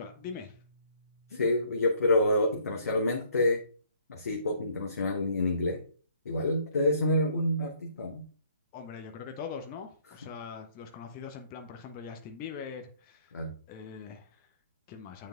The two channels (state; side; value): inverted; both; correlation -0.63